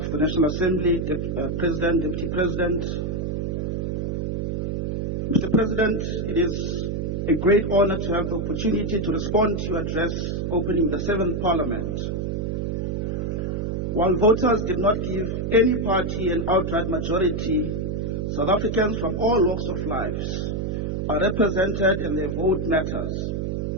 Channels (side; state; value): right; noise; hum, 1 dB below the sound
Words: the National Assembly, President, Deputy President. Mr. President, it is a great honor to have the opportunity to respond to your address opening the 7th Parliament. While voters did not give any party an outright majority, South Africans from all walks of life are represented and their vote matters,